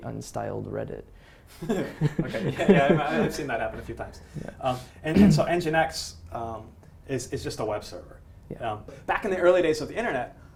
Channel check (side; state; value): both; identical; correlation 1.00